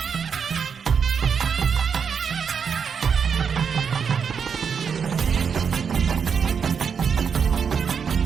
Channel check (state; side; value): quieter; left; 6.6 dB